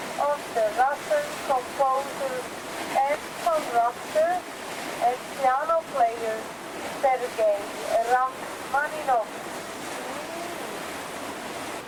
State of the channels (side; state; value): both; identical; correlation 1.00